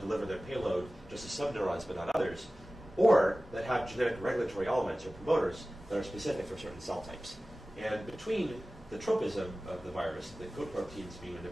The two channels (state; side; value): normal; both; correlation 0.96